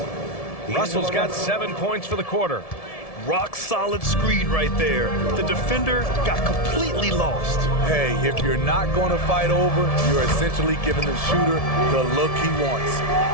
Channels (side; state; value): right; late; 1.7 ms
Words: Russell's got 7 points for the quarter. Rock solid screen right there. The defender got completely lost. Hey, if you're not going to fight over, you're essentially giving the shooter the look he wants.